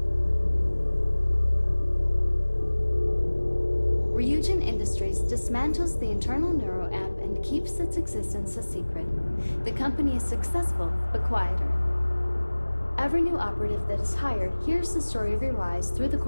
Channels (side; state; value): both; inverted; correlation -1.00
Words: Ryujin Industries dismantles the internal neuro-amp and keeps its existence a secret. The company is successful, but quieter. Every new operative that is hired hears the story of your rise through the